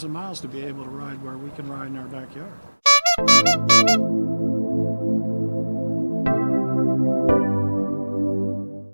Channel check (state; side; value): inverted; both; correlation -1.00